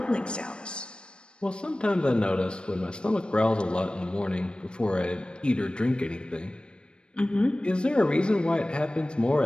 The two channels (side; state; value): right; late; 0.055 ms